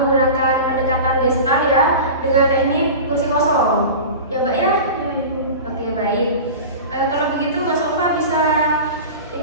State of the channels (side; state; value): both; inverted; correlation -0.32